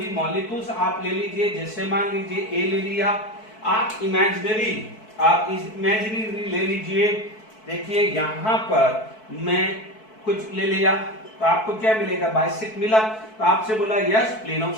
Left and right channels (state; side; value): late; right; 4.6 ms